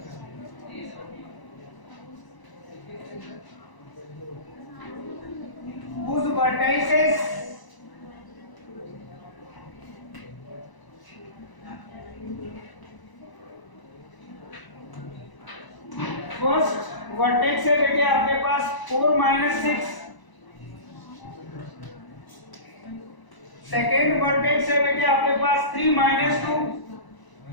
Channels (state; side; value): late; right; 1.0 ms